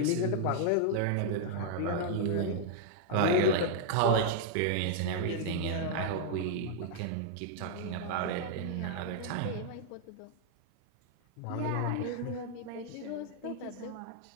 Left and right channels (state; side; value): different; both; correlation -0.01